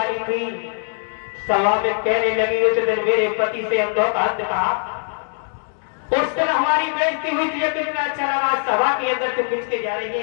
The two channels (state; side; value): silent; right; 59 dB below the other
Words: थी सभा में कहने लगी उस दिन मेरे पति से अंधोपात कहा। उस दिन हमारी बेइज्जती हुई थी, कितना अच्छा लगा। सभा के अंदर से खींच के जा रही